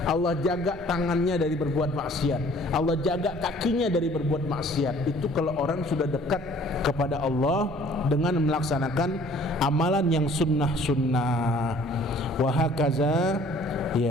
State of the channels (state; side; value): normal; both; correlation 0.55